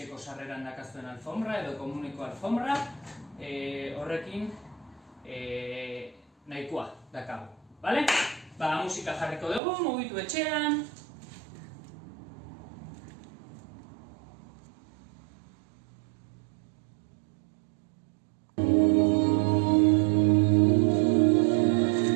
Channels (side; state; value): left; drops out; at 9.6 s